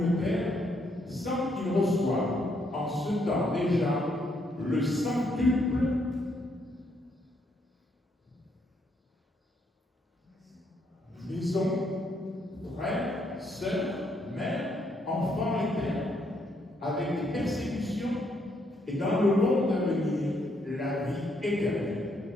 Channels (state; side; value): normal; both; correlation 0.74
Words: terre, sans qu'ils reçoivent en ce temps déjà le centuple maison, frères, sœurs, mères, enfants et terres, avec des persécutions, et dans le monde à venir, la vie éternelle.